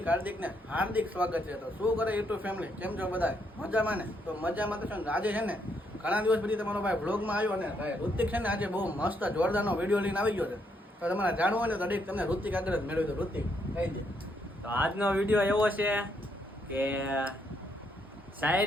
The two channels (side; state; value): both; normal; correlation 0.75